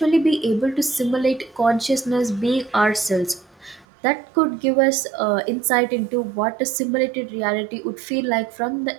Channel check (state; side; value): drops out; left; at 3.9 s